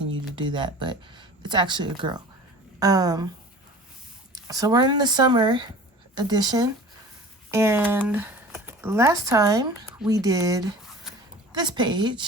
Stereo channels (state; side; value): normal; both; correlation 0.41